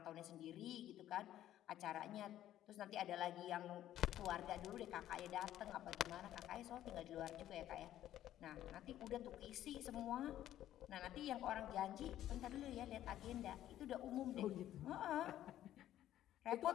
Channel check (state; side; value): quieter; right; 12.5 dB